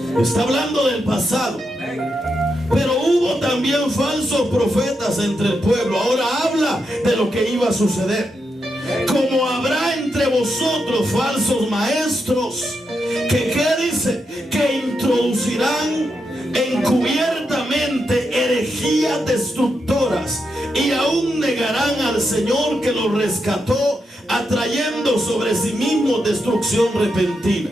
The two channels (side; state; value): both; normal; correlation 0.84